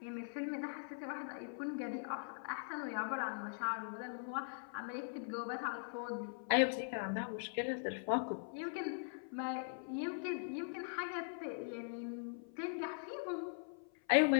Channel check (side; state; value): right; silent; 50 dB below the other